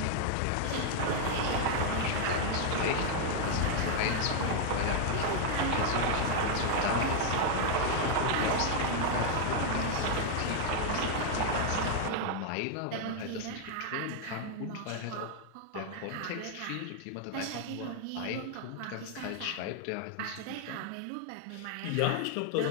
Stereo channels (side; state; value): both; different; correlation 0.00